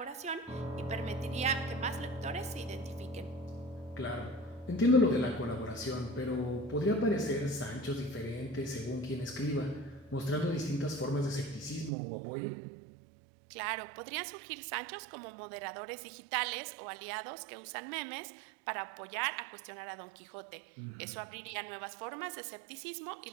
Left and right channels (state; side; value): drops out; left; at 11.9 s